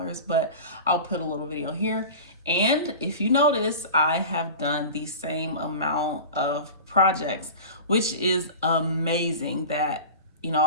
but I'll put a little video here. And if you notice, I have done the same amount of projects, which is amazing that, you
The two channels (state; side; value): inverted; both; correlation -0.33